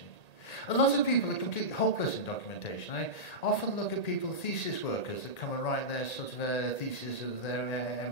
A lot of people are completely hopeless in documentation. I often look at people, thesis workers, that come and write their sort of thesis of their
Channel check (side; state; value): right; late; 1.8 ms